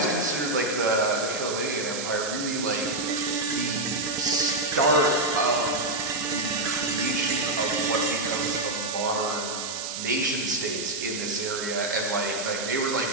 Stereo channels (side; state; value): right; noise; hiss, 5 dB below the sound